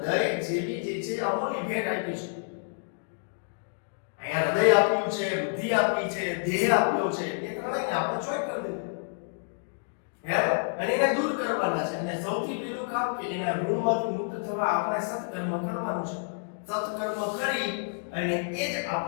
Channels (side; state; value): right; silent; digital silence